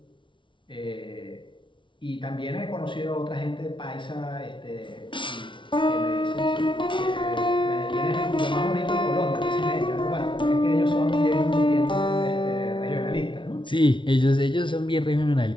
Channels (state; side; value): late; right; 0.24 ms